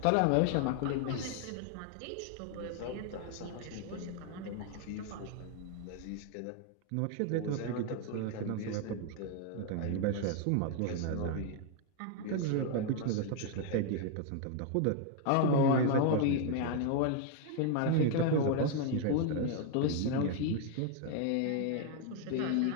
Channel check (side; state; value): both; different; correlation 0.00